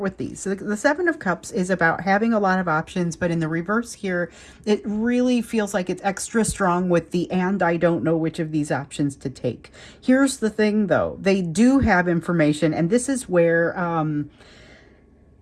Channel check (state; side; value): identical; both; correlation 1.00